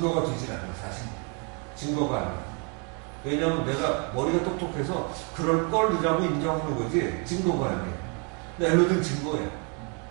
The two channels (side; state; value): left; quieter; 35.9 dB